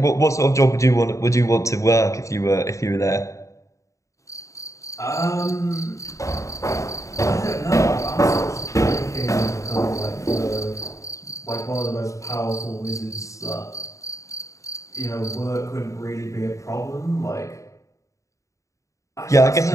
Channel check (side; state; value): right; late; 0.15 ms